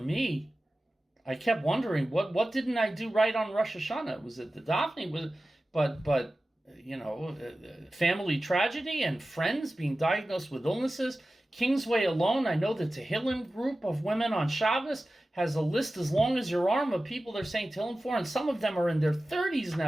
I kept wondering, what didn't I do right on Rosh Hashanah? Was it the davening? But family tragedy and friends being diagnosed with illnesses. Kingsway alone, I know the Tehillim group of women on Shabbos has a list as long as your arm of people they're saying Tehillim for, and some of them are in their 30s,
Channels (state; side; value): normal; both; correlation 0.95